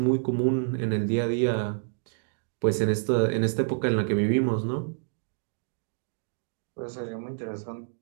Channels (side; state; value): left; silent; digital silence